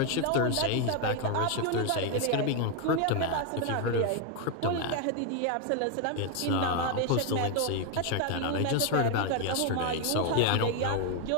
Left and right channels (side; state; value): both; different; correlation 0.01